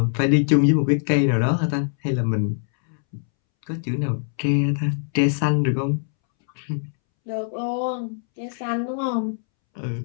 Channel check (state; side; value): silent; right; 64 dB below the other